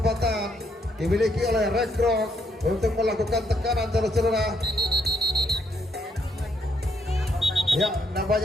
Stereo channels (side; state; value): both; normal; correlation 0.73